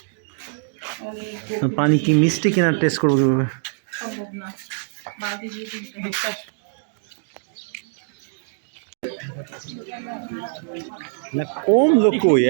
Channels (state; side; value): silent; left; digital silence